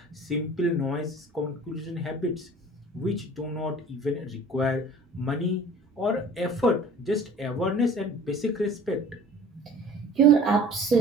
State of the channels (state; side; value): normal; both; correlation 0.46